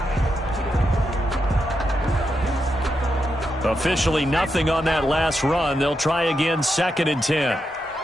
Officially nothing on that last run. They'll try again 2nd and 10.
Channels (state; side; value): normal; both; correlation 0.85